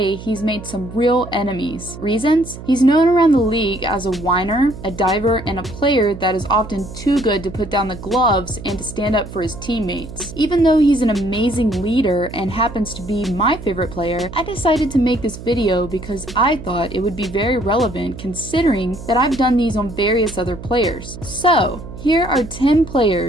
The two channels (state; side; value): noise; right; hum, 13 dB below the sound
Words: he's made some real enemies. Reasons? He's known around the league as a whiner, a diver, and a player that is often too good to put down the gloves and to stand up for his teammates. Even though he's an amazing leader and happens to be my favorite player, I decided to make this video because I thought it would be very relevant considering that I've done these on various other players. So, here are 10